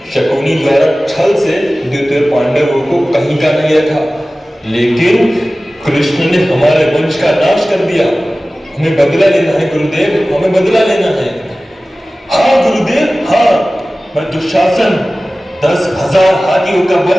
शकुनी द्वारा छल से द्वितीय पांडवों को कहीं का नहीं रखा। लेकिन कृष्ण ने हमारे वंश का नाश कर दिया। हमें बदला लेना है गुरुदेव, हमें बदला लेना है। हाँ गुरुदेव, हाँ। मैं दुशासन 10,000 हाथियों का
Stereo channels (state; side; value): normal; both; correlation 0.97